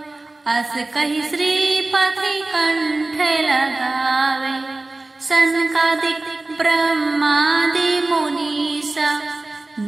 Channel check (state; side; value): quieter; left; 3.1 dB